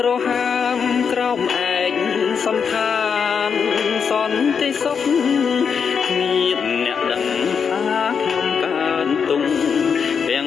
រហាមក្រោមឯកសំឋានសន្តិសុខមានអ្នកដឹងថាខ្ញុំកើនទុំទាំ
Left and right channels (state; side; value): quieter; right; 6.5 dB